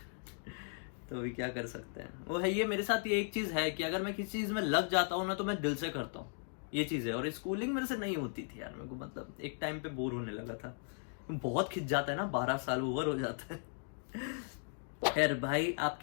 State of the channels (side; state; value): right; silent; 53 dB below the other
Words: तो अभी क्या कर सकते हैं। वो है ये, मेरे साथ ये एक चीज है कि अगर मैं किसी चीज में लग जाता हूँ ना तो मैं दिल से करता हूँ, ये चीज है। और स्कूलिंग मेरे से नहीं होती थी यार, मेरे को मतलब एक टाइम पे बोर होने लगा था, बहुत खिंच जाता है ना, 12 साल ओवर हो जाता है। खैर भाई,